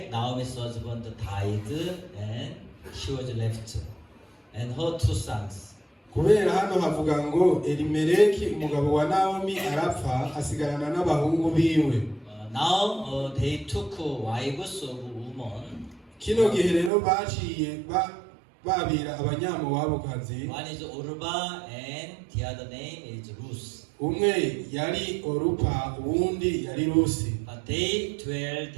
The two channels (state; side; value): drops out; left; at 16.9 s